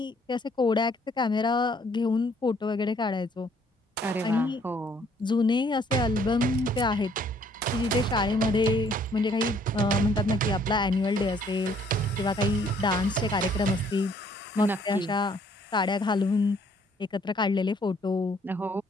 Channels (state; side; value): normal; both; correlation 0.63